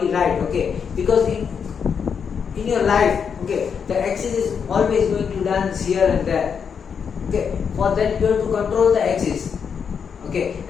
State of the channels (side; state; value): right; quieter; 6.7 dB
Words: right. Okay, because in your life, okay, the axis is always going to dance here and there. Okay, for that you have to control the axis. Okay,